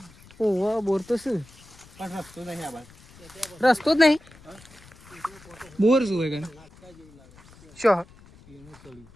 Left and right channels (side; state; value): left; noise; rumble, 24 dB below the sound